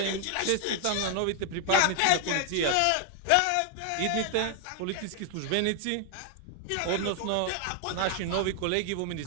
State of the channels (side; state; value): both; different; correlation 0.00